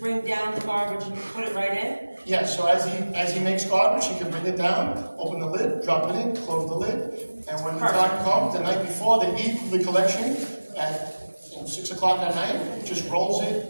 down the garbage and put it right in? Yes, so as he makes garbage, he can bring it down, open the lid, drop it in, close the lid, and when the time comes, the night before, they eat the collection at 6 o'clock at night, just rolls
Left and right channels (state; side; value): inverted; both; correlation -1.00